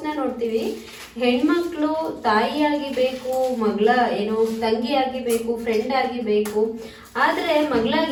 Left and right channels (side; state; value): both; identical; correlation 1.00